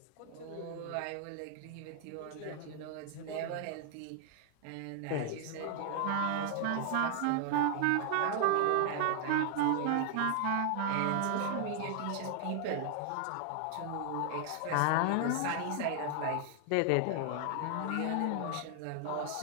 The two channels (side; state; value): both; different; correlation 0.00